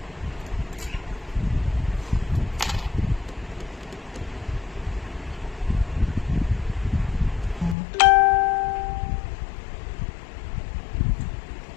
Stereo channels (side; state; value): right; drops out; at 7.8 s